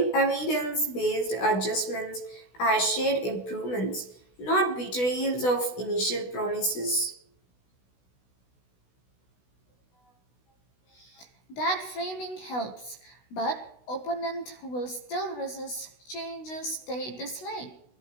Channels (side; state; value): right; late; 16 ms